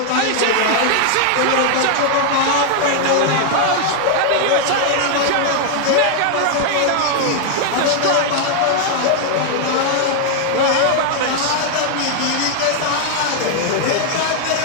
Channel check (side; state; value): both; different; correlation 0.00